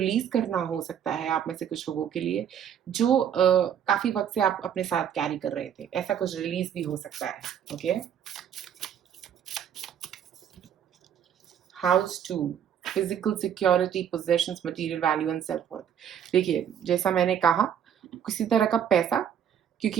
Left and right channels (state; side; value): quieter; left; 8.9 dB